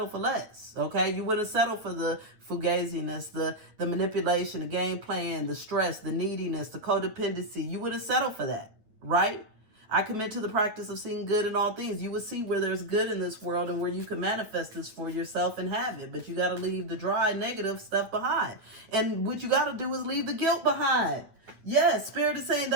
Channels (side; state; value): left; late; 9.4 ms